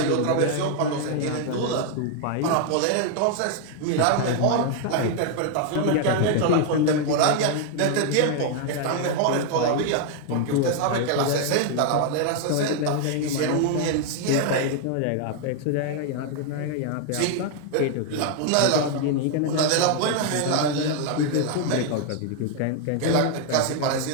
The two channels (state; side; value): different; both; correlation 0.00